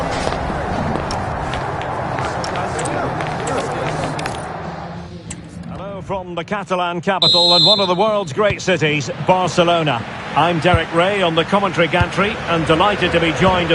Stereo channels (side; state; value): both; identical; correlation 1.00